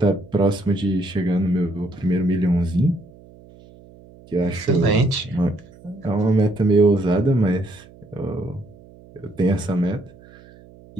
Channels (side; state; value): right; noise; hum, 23 dB below the sound